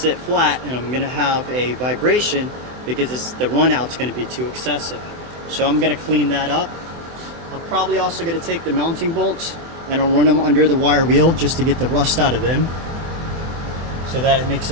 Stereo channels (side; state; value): left; late; 24 ms